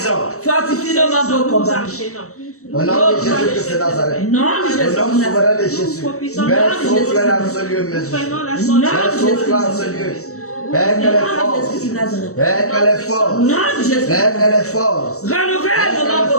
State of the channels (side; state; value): right; late; 0.64 ms